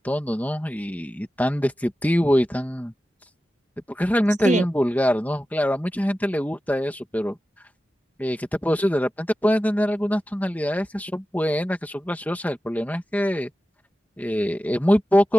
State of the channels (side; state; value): both; normal; correlation 0.93